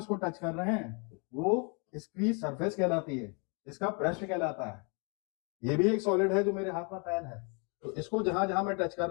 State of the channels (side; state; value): right; quieter; 34.6 dB